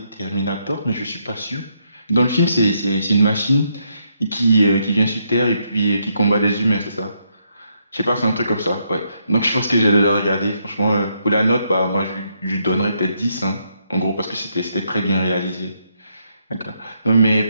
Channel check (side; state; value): both; inverted; correlation -0.77